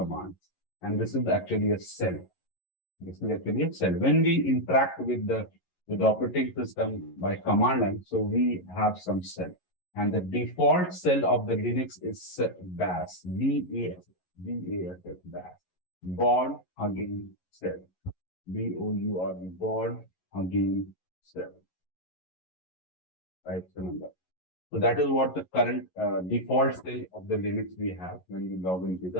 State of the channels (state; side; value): late; right; 11 ms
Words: And this is actually a cell. This is actually a cell. When we interact with the operating system by command line, so we have some cell. And the default cell of the Linux is BAS, B-A-S, BAS. Board again cell. B-O-U-R-D, board again cell. Right, remember. So that is what the current default state of the Linux we have when we log into